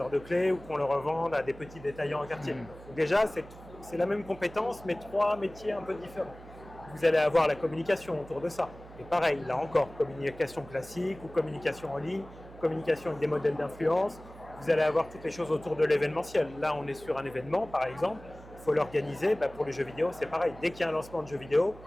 de clés ou qu'on le revende à des petits détaillants en quartier. Donc déjà, c'est la même compétence, mais trois métiers un peu différents. Vous allez avoir la communication autour de ça. Et pareil, là encore, communication classique ou communication en ligne, communication avec des modèles d'influence. Vous allez avoir toutes les choses autour de l'événementiel. Là, on est sur un événement, par exemple. Il faut l'organiser. Pour les jeux vidéo, c'est pareil. Dès qu'il y a un lancement de jeux vidéo,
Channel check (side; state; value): right; noise; hum, 18 dB below the sound